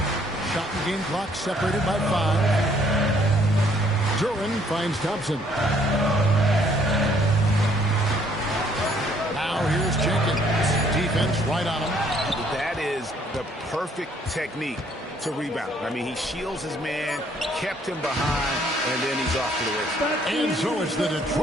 Shot and game clock separated by 5. Duran finds Thompson. Now here's Jenkins. Defense right on him. That is the perfect technique to rebound. I mean, he shields his man, kept him behind, and then he's off to the races. And so it's the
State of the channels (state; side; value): normal; both; correlation 0.64